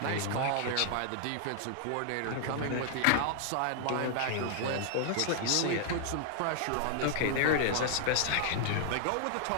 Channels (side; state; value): both; different; correlation -0.01